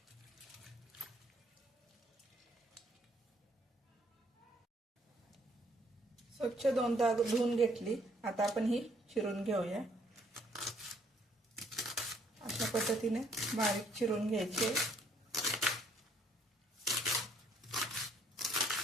स्वच्छ दोनदा धुवून घेतली। आता आपण ही चिरून घेऊया। अशा पद्धतीने बारीक चिरून घ्यायचे।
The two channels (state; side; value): normal; both; correlation 0.65